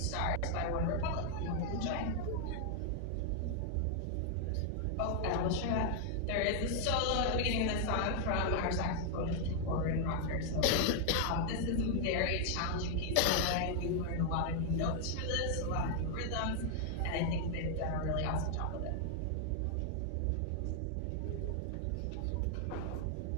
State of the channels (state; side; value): different; both; correlation 0.00